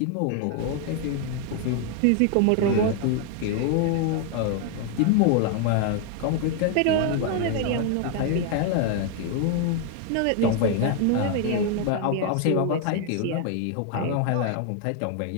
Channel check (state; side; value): different; both; correlation 0.00